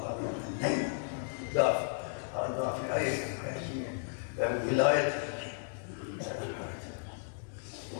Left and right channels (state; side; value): silent; right; digital silence